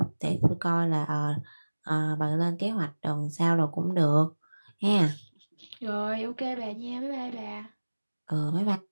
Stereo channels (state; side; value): inverted; both; correlation -1.00